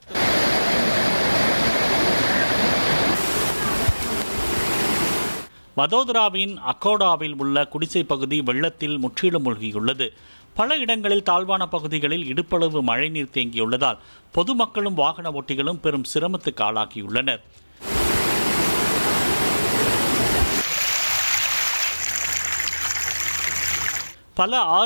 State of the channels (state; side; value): inverted; both; correlation -1.00